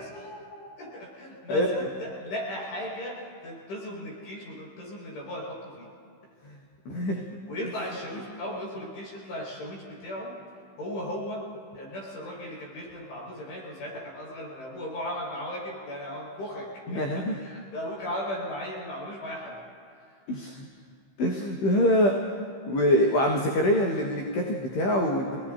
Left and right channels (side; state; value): right; late; 15 ms